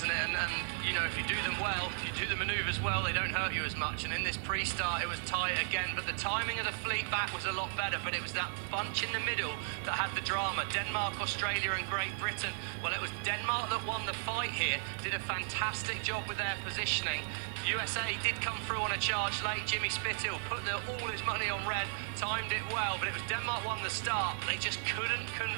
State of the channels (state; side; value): silent; left; 54 dB below the other